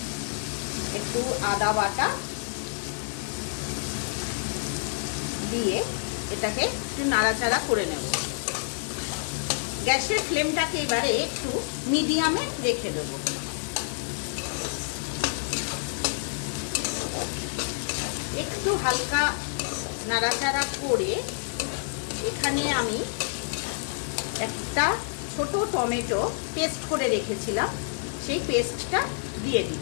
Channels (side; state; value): right; silent; digital silence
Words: একটু আদা বাটা দিয়ে এটাকে একটু নাড়াচাড়া করে নেব। গ্যাসের ফ্লেমটাকে এবারে একটু মিডিয়ামে রেখে দেব। একটু হালকা নাড়াচাড়া করে এখানে আমি একটা ছোট টমেটো পেস্ট করে রেখেছিলাম, সেই পেস্টটা দিয়ে